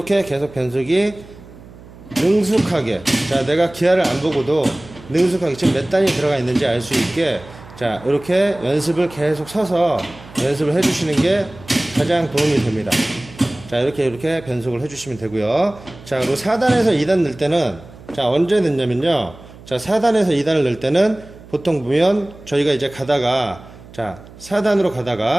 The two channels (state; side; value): noise; right; hum, 20 dB below the sound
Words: 계속 변속이 능숙하게. 자, 내가 기아를 안 보고도 능숙하게 지금 몇 단이 들어가 있는지 알 수 있게, 자, 이렇게 연습을 계속 서서 연습을 해주시는 게 가장 도움이 됩니다. 자, 이렇게 변속을 해주시면 되고요. 자, 그리고 4단에서 2단 넣을 때는, 자, 언제 넣냐면요. 자, 4단에서 2단을 넣을 때는 보통 보면 저희가 이제 가다가 자, 4단으로